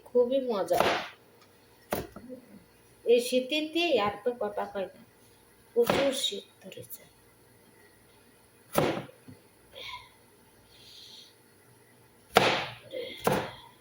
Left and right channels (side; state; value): both; identical; correlation 1.00